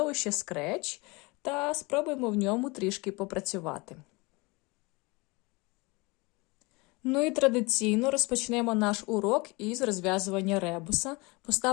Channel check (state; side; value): quieter; right; 25.9 dB